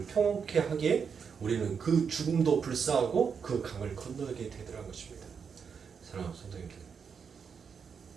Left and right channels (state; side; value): quieter; left; 6.4 dB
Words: 평온케 하기에 우리는 그 죽음도 불사하고 그 강을 건너게 되더라는 것입니다. 사랑하는 성도님들,